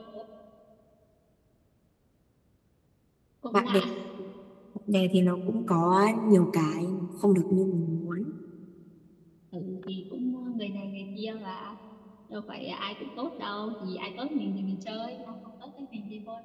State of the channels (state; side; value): identical; both; correlation 1.00